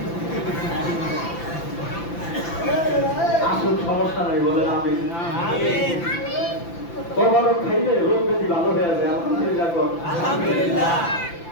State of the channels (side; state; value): right; late; 5.9 ms